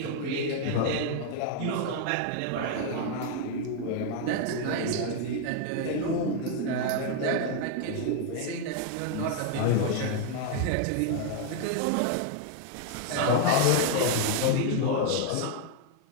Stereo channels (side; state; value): both; different; correlation 0.00